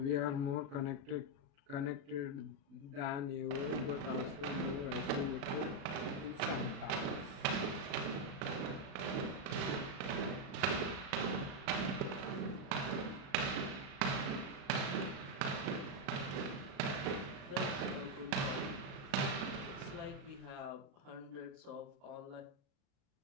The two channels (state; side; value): late; left; 36 ms